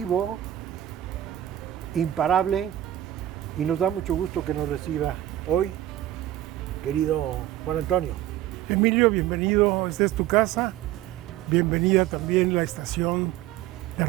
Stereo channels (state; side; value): quieter; left; 13.3 dB